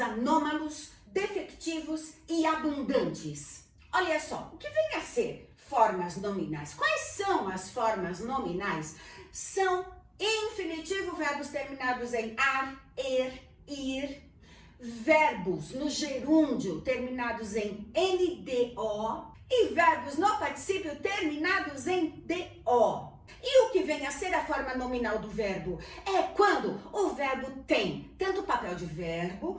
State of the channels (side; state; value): both; identical; correlation 1.00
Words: anômalos, defectivos e abundantes. Olha só, o que vem a ser formas nominais? Quais são as formas nominais? São infinitivo, verbos terminados em ar, ir, verbos no gerúndio terminados em NDO e verbos no particípio terminados em DO. E o que vem a ser a forma nominal do verbo? É quando o verbo tem tanto papel de